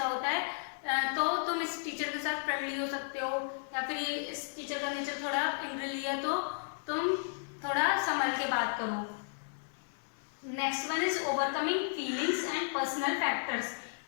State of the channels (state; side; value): silent; right; 55 dB below the other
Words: होता है। तो तुम इस टीचर के साथ फ्रेंडली हो सकते हो, या फिर ये इस टीचर का नेचर थोड़ा एंग्रीली है तो तुम थोड़ा संभल के बात करो। Next one is overcoming feelings and personal factors.